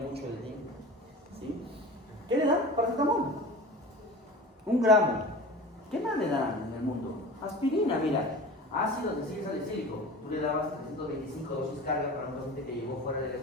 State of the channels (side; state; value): both; normal; correlation 0.36